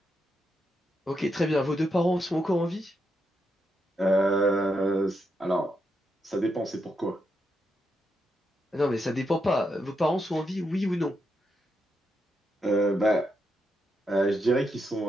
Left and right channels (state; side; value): normal; both; correlation 0.82